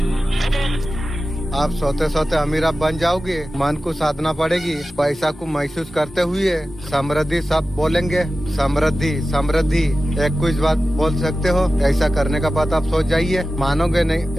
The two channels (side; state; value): both; normal; correlation 0.94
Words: आप सोते सोते अमीर आप बन जाओगे। मन को साधना पड़ेगी। पैसा को महसूस करते हुए समृद्धि सब बोलेंगे। समृद्धि समृद्धि एक कुछ बात बोल सकते हो। ऐसा करने का बात आप सोच जाइए, मानोगे नहीं।